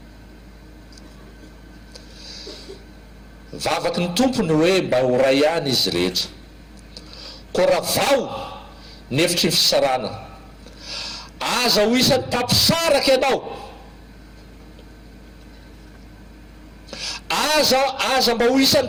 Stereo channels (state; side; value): identical; both; correlation 1.00